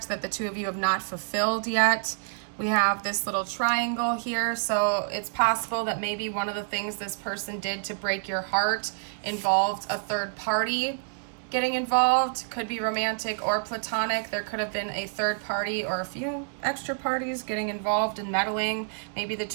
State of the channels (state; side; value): silent; left; digital silence